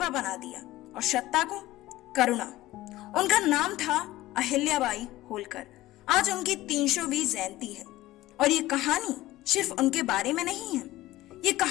बना दिया और सत्ता को करुणा। उनका नाम था अहिल्याबाई होलकर। आज उनकी 300वीं जयंती है और ये कहानी सिर्फ उनके बारे में नहीं है। ये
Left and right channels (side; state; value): right; quieter; 16.5 dB